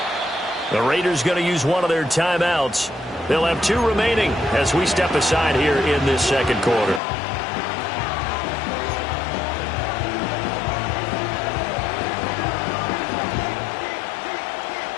The Raiders going to use one of their timeouts. They'll have 2 remaining as we step aside here in this second quarter.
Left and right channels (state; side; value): drops out; right; at 7.0 s